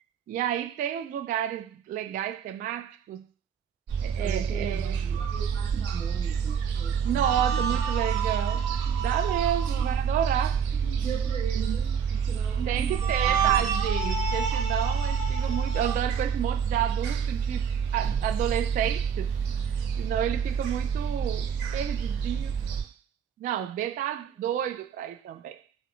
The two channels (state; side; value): quieter; left; 7.4 dB